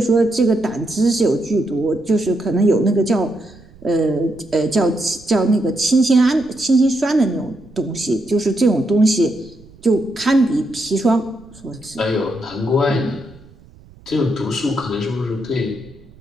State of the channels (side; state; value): right; noise; rumble, 24 dB below the sound